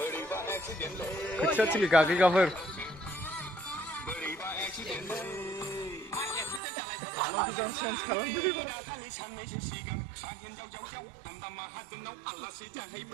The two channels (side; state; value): left; drops out; at 6.6 s